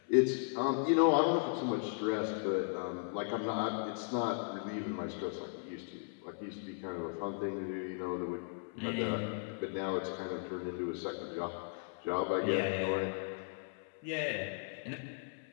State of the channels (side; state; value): right; silent; 53 dB below the other